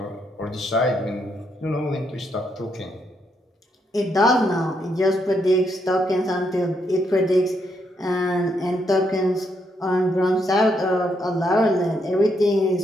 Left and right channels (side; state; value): both; normal; correlation 0.77